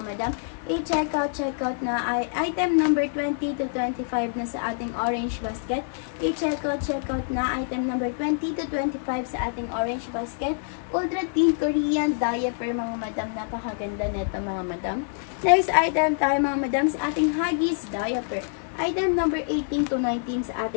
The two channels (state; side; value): silent; right; 61 dB below the other